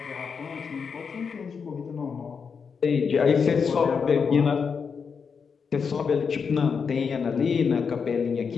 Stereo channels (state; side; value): quieter; right; 6.0 dB